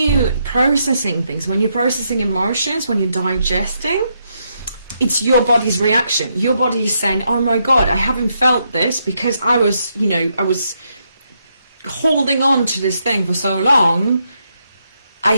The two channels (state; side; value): inverted; both; correlation -0.79